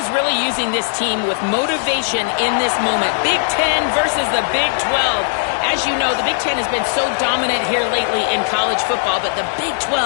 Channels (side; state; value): right; silent; digital silence